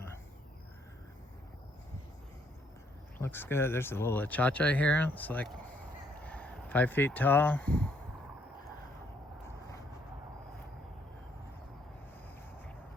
looks good. There's a little achacha here. It's like 5 feet tall.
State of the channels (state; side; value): normal; both; correlation 0.69